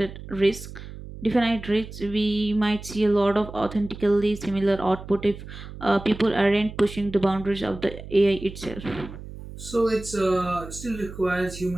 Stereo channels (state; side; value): noise; right; hum, 13 dB below the sound